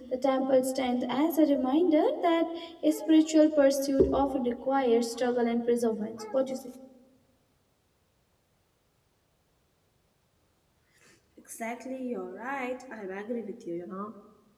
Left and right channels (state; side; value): identical; both; correlation 1.00